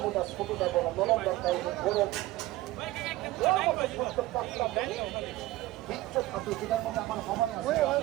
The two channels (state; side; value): quieter; left; 17.4 dB